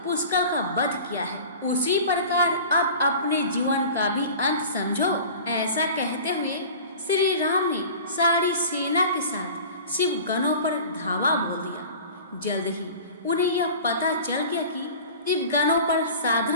पुष्कर का वध किया है उसी प्रकार अब अपने जीवन का भी अंत समझो। ऐसा कहते हुए श्री राम ने सारी सेना के साथ शिव गणों पर धावा बोल दिया। जल्द ही उन्हें यह पता चल गया कि शिव गणों पर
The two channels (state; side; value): inverted; both; correlation -0.39